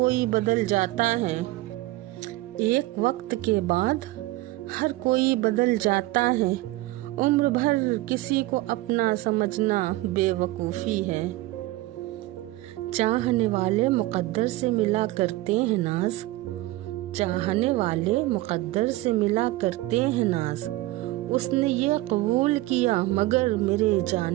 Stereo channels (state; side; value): quieter; left; 18.2 dB